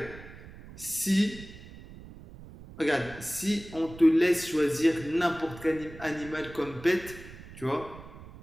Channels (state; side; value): noise; right; rumble, 16 dB below the sound